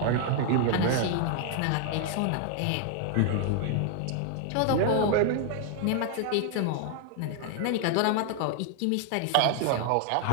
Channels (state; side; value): different; both; correlation 0.00